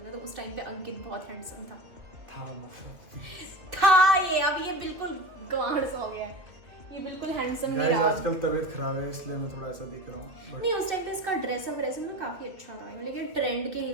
तो उस टाइम पे अंकित बहुत हैंडसम था ये। अब ये बिल्कुल गांड सा हो गया है, ये बिल्कुल हैंडसम नहीं रहा। आजकल तबीयत खराब है इसलिए मैं थोड़ा ऐसा दिख रहा हूँ। नहीं, उस टाइम पे इसका ड्रेसअप ना काफी अच्छा था, लेकिन ट्रेंड के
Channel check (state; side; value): late; left; 2.5 ms